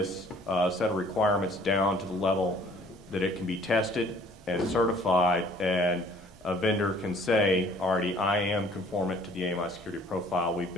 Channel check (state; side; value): normal; both; correlation 0.55